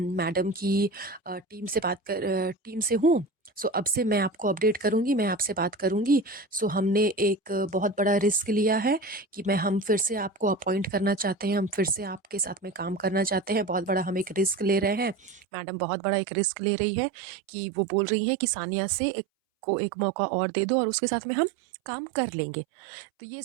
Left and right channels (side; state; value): left; drops out; at 15.4 s